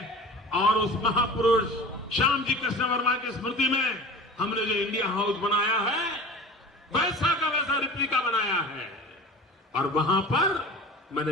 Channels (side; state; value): both; normal; correlation 0.37